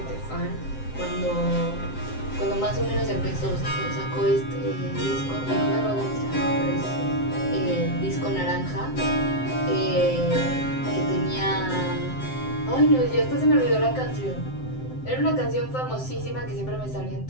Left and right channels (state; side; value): late; right; 7.7 ms